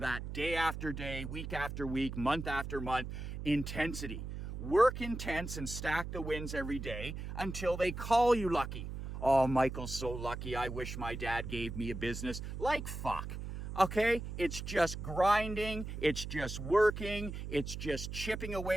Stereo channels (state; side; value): noise; right; hum, 7 dB below the sound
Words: day after day, week after week, month after month, intensity. Work intense and stack the wins every day until they call you lucky. Oh, Michael's so lucky. I wish my dad gave me a business. Like fuck. Okay, it's just grinding, it's just working, it's just chipping